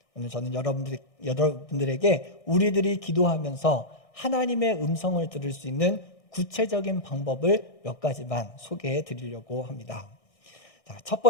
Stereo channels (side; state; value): right; late; 1.6 ms